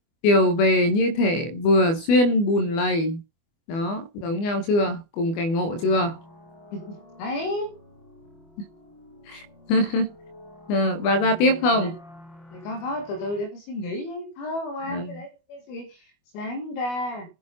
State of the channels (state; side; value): late; right; 24 ms